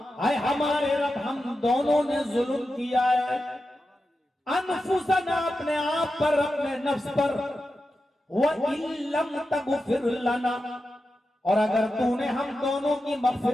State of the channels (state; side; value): normal; both; correlation 0.90